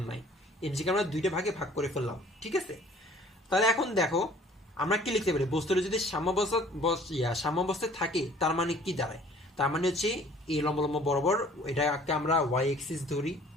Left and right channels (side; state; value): both; normal; correlation 0.53